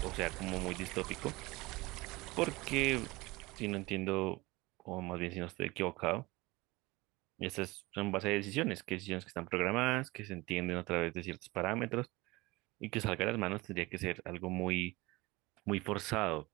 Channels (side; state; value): left; quieter; 21.9 dB